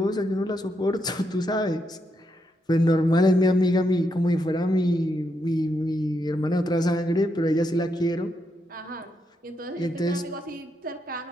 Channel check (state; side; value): normal; both; correlation 0.81